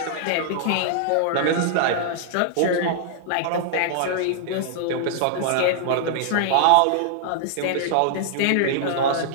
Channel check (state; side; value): different; both; correlation -0.01